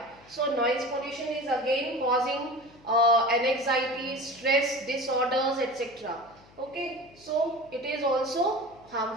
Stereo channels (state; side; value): noise; left; hum, 26 dB below the sound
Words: So noise pollution is again causing anxiety, stress, disorders, etc. Okay, so it is also